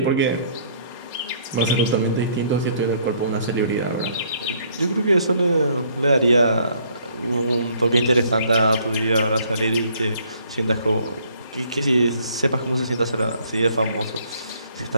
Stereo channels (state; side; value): inverted; both; correlation -0.62